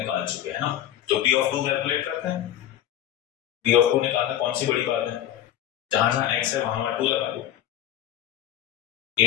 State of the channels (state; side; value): quieter; right; 11.8 dB